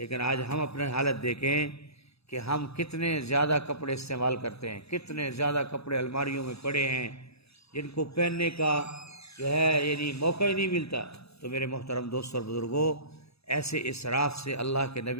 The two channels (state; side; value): late; right; 0.78 ms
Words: آج ہم اپنے حالت دیکھیں کہ ہم کتنے زیادہ کپڑے استعمال کرتے ہیں، کتنے زیادہ کپڑے الماریوں میں پڑے ہیں جن کو پہننے کا جو ہے یعنی موقع ہی نہیں ملتا. تو میرے محترم دوستوں اور بزرگوں، ایسے اسراف سے اللہ کے